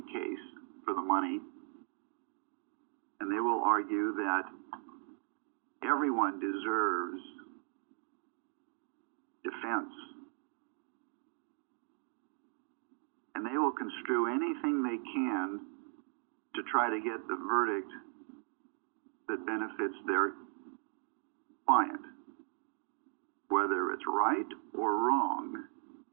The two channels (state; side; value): quieter; left; 31.4 dB